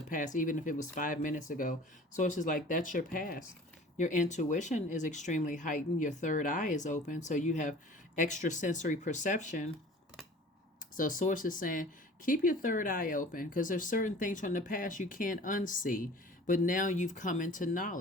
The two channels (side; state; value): both; normal; correlation 0.45